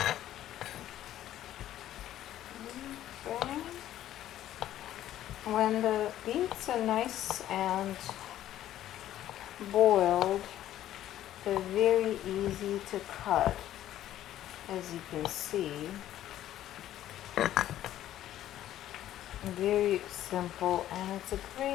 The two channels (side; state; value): right; quieter; 12.6 dB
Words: Okay. When the beets are nice and boiled, they're very easy to cut, as you can see. Very simple, and it's a